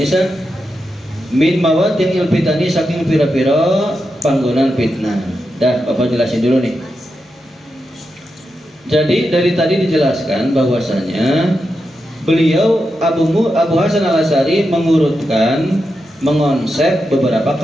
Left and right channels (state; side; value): normal; both; correlation 0.87